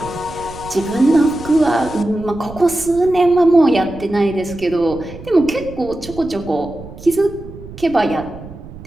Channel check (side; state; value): right; noise; rumble, 16 dB below the sound